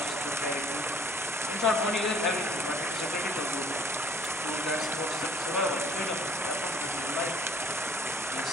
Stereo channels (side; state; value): both; normal; correlation 0.56